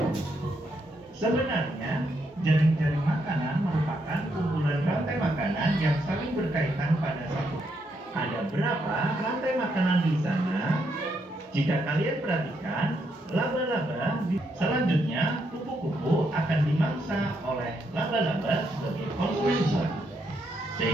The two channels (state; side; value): normal; both; correlation 0.78